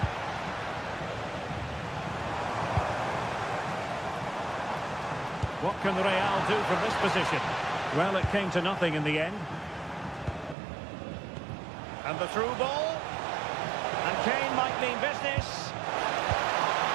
What can Real do from this position? Well, it came to nothing in the end. And the through ball. And Kane might mean business.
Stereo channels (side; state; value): left; drops out; at 10.6 s